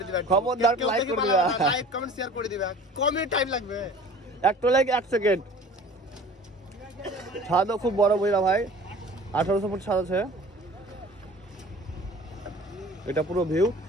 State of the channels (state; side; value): normal; both; correlation 0.44